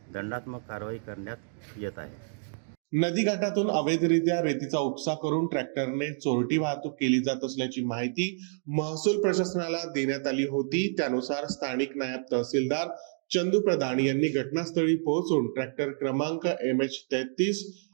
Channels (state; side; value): silent; left; digital silence